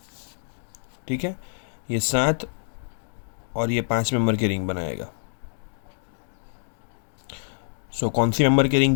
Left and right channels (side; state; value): right; silent; digital silence